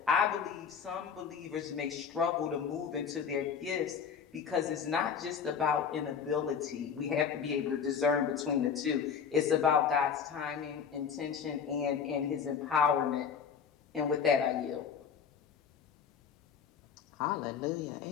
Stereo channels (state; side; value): quieter; right; 6.8 dB